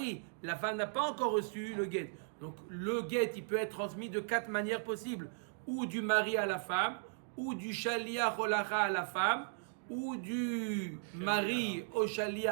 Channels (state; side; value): silent; left; digital silence